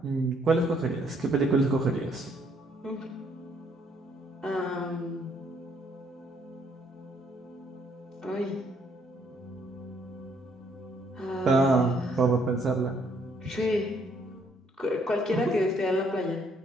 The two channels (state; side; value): normal; both; correlation 0.68